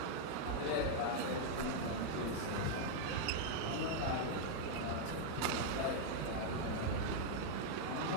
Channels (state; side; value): different; both; correlation -0.01